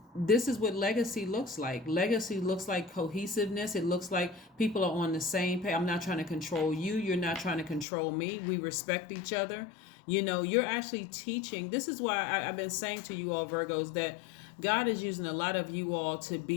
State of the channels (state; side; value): drops out; right; at 7.9 s